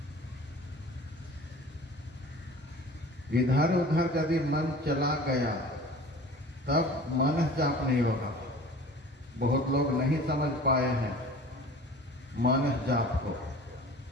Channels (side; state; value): both; normal; correlation 0.42